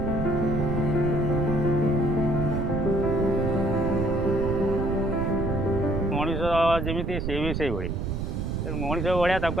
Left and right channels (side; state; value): right; noise; rumble, 2 dB below the sound